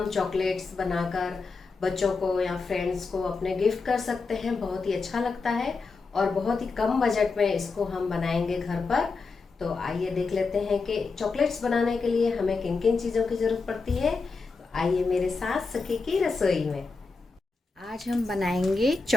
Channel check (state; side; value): quieter; right; 4.3 dB